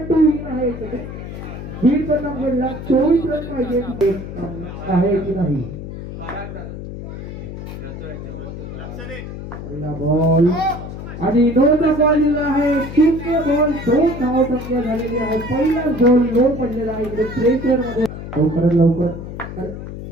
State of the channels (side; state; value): left; noise; hum, 9 dB below the sound